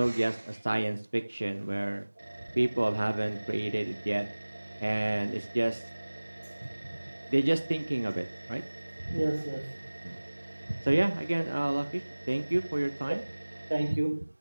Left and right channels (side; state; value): both; inverted; correlation -1.00